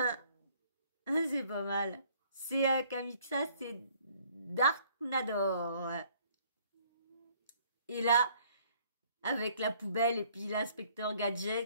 pas mal. C'est Kamiksa, c'est Darknador. Et là, avec la poubelle et puis l'inspecteur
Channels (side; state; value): both; inverted; correlation -0.61